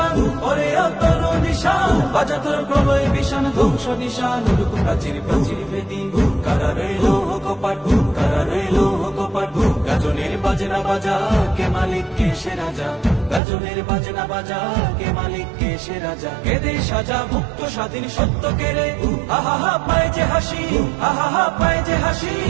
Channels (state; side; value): drops out; left; at 13.4 s